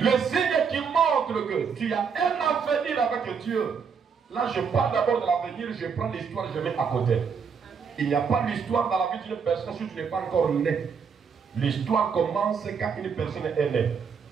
signe qui montre que tu as un avenir avec Dieu. Là, je parle d'abord de l'avenir, je prends l'histoire, je mets à côté. Il n'y a pas d'histoire dans la vie d'une personne si tu n'es pas encore né. L'histoire commence quand une personne est née.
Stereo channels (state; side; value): quieter; left; 6.2 dB